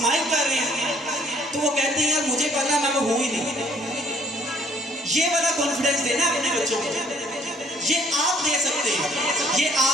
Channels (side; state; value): both; normal; correlation 0.60